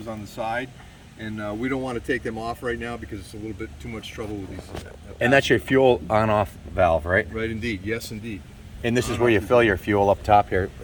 on the side, and we don't want to take them off right now because it's a little bit too much trouble with these. And that's your fuel on-off valve, right? Right, indeed. Yes, indeed. And this is where you fill your fuel up top here.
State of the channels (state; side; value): identical; both; correlation 1.00